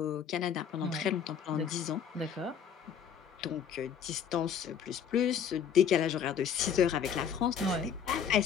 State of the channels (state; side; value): quieter; right; 7.7 dB